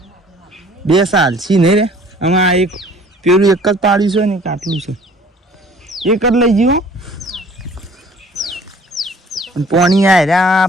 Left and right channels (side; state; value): both; normal; correlation 0.52